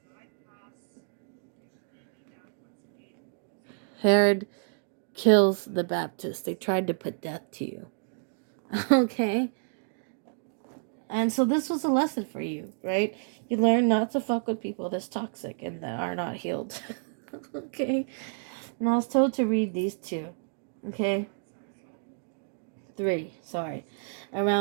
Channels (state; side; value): silent; left; digital silence